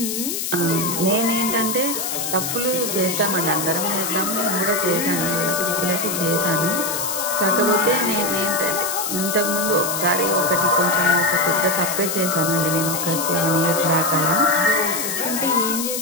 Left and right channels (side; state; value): left; noise; hiss, 3 dB below the sound